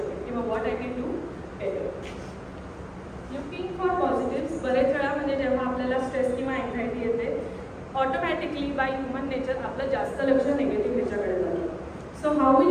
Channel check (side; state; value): both; identical; correlation 1.00